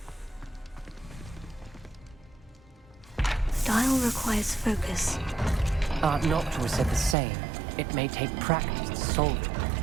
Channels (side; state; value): left; drops out; at 7.2 s